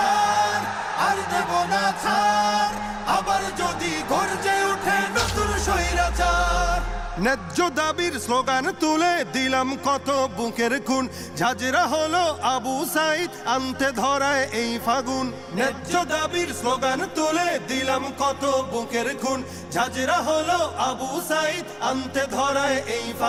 আর দেব না ছাড়। আবার যদি গর্জে ওঠে নতুন স্বৈরাচার। ন্যায্য দাবির স্লোগান তুলে দিলাম কত বুকের খুন, ঝাঁঝরা হলো আবু সাইদ আনতে ধরায় এই ফাগুন। ন্যায্য দাবির স্লোগান তুলে দিলাম কত বুকের খুন, ঝাঁঝরা হলো আবু সাইদ আনতে ধরায় এই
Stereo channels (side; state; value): both; identical; correlation 1.00